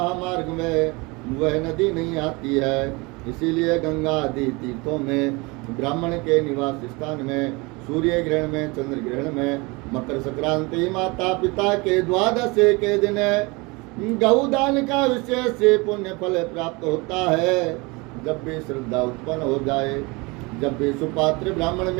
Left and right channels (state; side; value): quieter; left; 26.1 dB